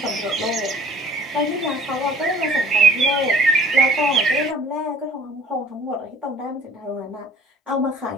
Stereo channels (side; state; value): both; normal; correlation 0.50